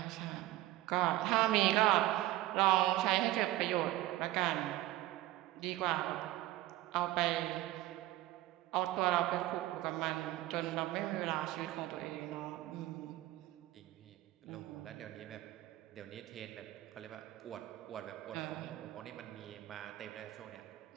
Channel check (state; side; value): quieter; left; 16.2 dB